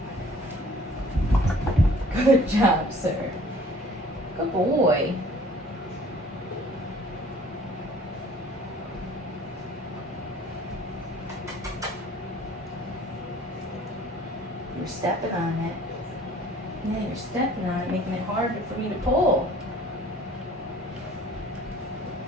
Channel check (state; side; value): normal; both; correlation 0.52